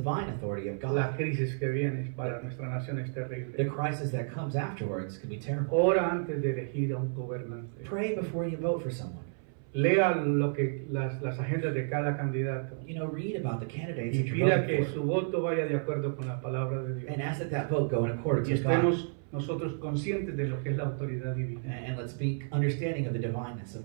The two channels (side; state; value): left; silent; 57 dB below the other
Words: authority of la God, crisis que viene para nuestra nación es the terrible. crisis that comes afterwards could be terrible. Ora antes de elegir a un gobernante. Pray before you vote for someone. Lea lo que las agendas de cada candidato You know, read about the candidates y that you're pida voting que for, su voto vaya de acuerdo con la palabra de Dios. and ask that that vote go in accordance Y with God. estemos nosotros conscientes de lo que es la autoridad divina. And let's be understanding of the divineness